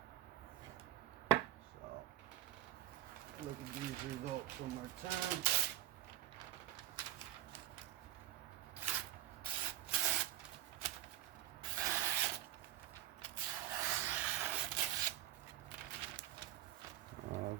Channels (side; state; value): left; quieter; 14.2 dB